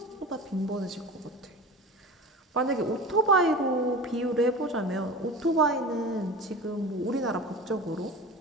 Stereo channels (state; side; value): normal; both; correlation 0.34